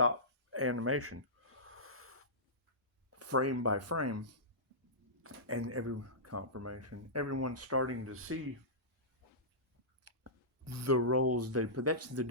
animation, frame by frame, and every confirmation, everyone's starting to see the roles they put. That's the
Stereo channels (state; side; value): normal; both; correlation -0.18